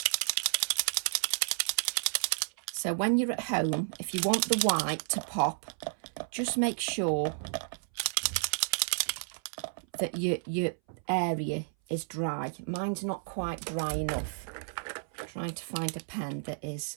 So when you're at home, if you want the white to pop, just make sure that your area is dry. Mine's not quite dry enough. I'm trying to find a pen that is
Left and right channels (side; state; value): left; silent; 57 dB below the other